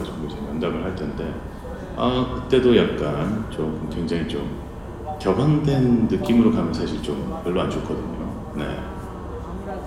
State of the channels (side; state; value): both; identical; correlation 1.00